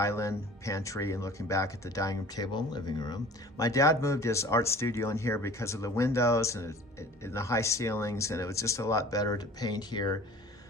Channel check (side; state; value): both; normal; correlation 0.45